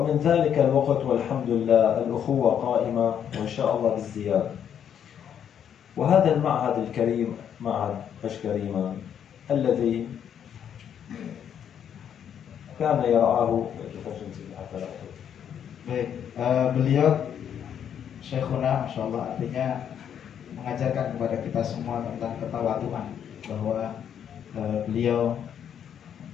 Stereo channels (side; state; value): right; quieter; 8.8 dB